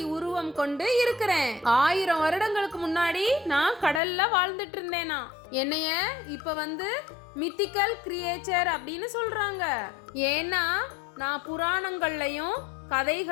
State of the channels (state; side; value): drops out; right; at 4.0 s